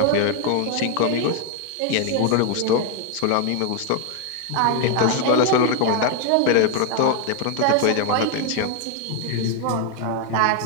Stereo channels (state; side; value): different; both; correlation 0.00